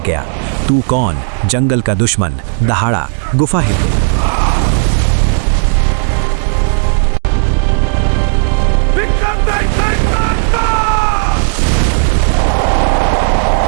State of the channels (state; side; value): silent; left; digital silence